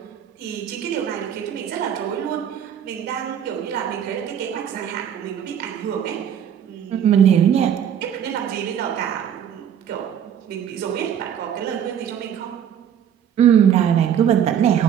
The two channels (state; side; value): quieter; left; 9.2 dB